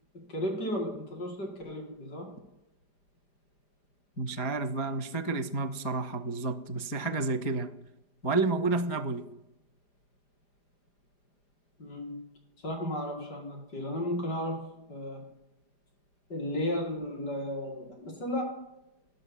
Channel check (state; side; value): late; right; 5.0 ms